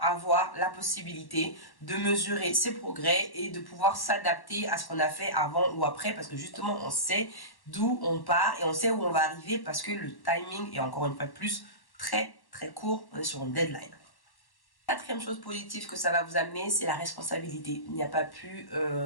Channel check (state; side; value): late; right; 1.1 ms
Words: la possibilité de mesurer ses progrès et de pouvoir s'adapter à ce qu'on a fait avant ou après parce que justement on sait d'où on part et on sait où on va arriver parce que le timing est encore une fois plus très très court, on est sur une deadline. Quatrième chose positive que ça va vous amener, c'est la responsabilité. Il n'y a pas plus